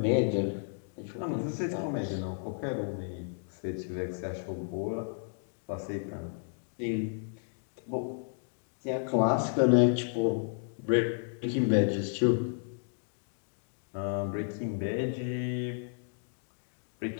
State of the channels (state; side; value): silent; right; digital silence